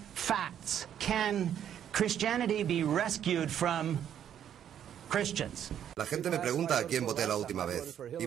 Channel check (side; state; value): left; quieter; 9.7 dB